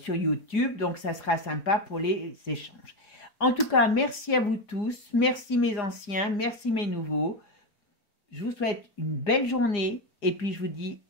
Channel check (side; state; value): right; late; 4.9 ms